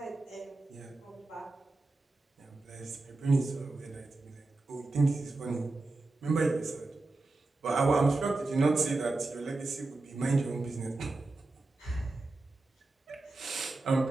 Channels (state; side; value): quieter; left; 3.2 dB